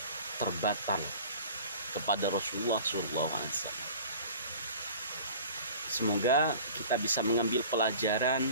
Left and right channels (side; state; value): both; inverted; correlation -0.42